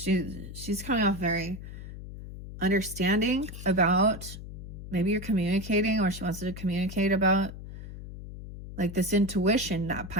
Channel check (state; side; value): noise; left; hum, 11 dB below the sound